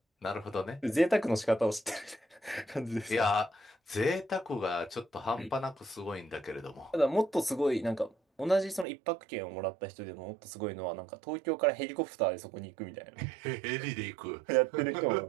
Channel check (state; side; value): drops out; left; at 8.8 s